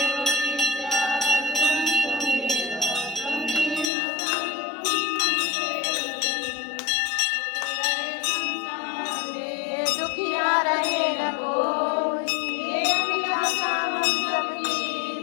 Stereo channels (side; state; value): right; drops out; at 3.9 s